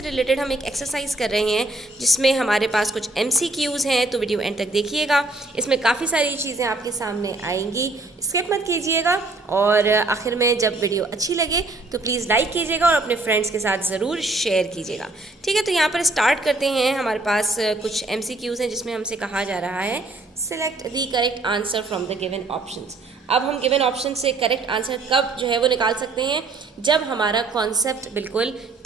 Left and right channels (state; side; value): quieter; left; 3.1 dB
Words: हम एक एक्सरसाइज कर रहे हैं जिसमें हमारे पास कुछ MCQs हैं, तो वीडियो एंड तक देखिएगा। इसमें काफ़ी सारी चीज़ें आपके सामने आएंगी, स्किप मत कीजिएगा। और आखिर में जब वीडियो अच्छी लगे तो प्लीज़ लाइक कीजिएगा और अपने फ्रेंड्स के साथ ज़रूर शेयर कीजिएगा। ठीक है, तो यहाँ पर स्टार्ट करते हैं। हमारे पास कुछ MCQs हैं जिसमें हमसे कहा जा रहा है select the correct answer from the given options. अब हम गिवन ऑप्शन से करेक्ट आंसर कब जो है वो निकाल सकते हैं, जब हमारा कॉन्सेप्ट बिल्कुल